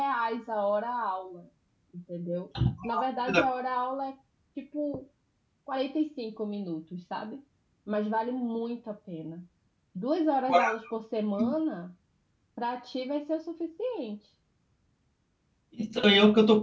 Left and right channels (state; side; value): identical; both; correlation 1.00